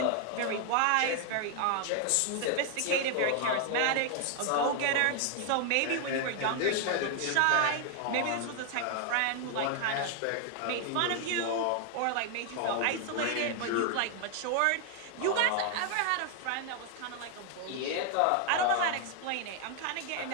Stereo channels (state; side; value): different; both; correlation 0.00